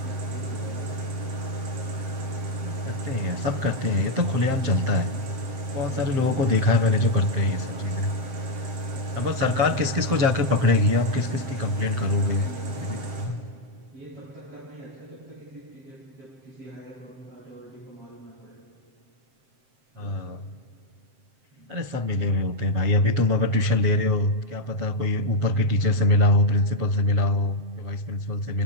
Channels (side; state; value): left; late; 7.6 ms